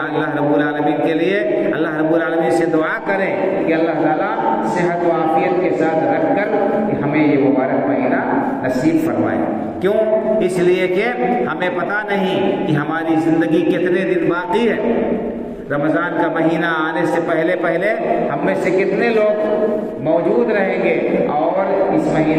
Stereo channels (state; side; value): identical; both; correlation 1.00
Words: رب العالمین کے لیے اللہ رب العالمین سے دعا کریں کہ اللہ تعالیٰ صحت و عافیت کے ساتھ رکھ کر کہ ہمیں یہ مبارک مہینہ نصیب فرمائے۔ کیوں؟ اس لیے کہ ہمیں پتہ نہیں کہ ہماری زندگی کتنے دن باقی ہے۔ رمضان کا مہینہ آنے سے پہلے ہم میں سے کتنے لوگ موجود رہیں گے، اور اس